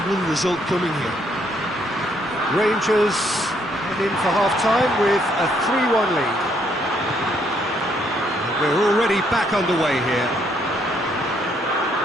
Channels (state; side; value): normal; both; correlation 0.70